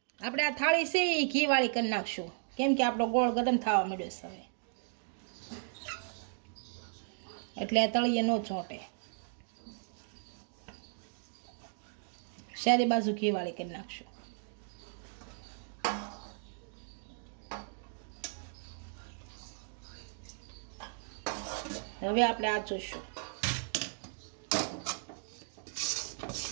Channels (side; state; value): left; silent; digital silence